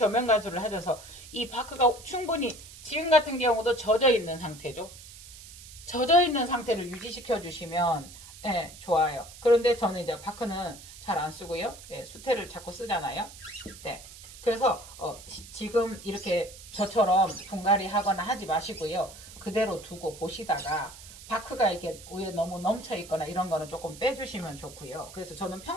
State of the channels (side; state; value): right; noise; hiss, 17 dB below the sound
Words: 가수를 해줘서 이 바크가 충분히 지금 같은 경우도 젖어 있는 상태죠. 젖어 있는 상태를 유지시켜 주시면 예, 좋아요. 그런데 저는 이제 바크는 잘 안 쓰고요. 예, 수태를 자꾸 쓰잖아요. 네. 그래서 지금 이렇게 저처럼 분갈이 하거나 하지 마시고요. 그대로 두고 보시다가 바크가 이렇게 위에 너무 넘쳐 있거나 이런 거는 조금 빼주시면 좋고요. 그래서 저는